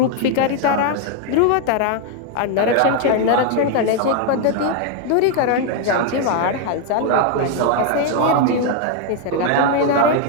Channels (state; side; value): different; both; correlation 0.01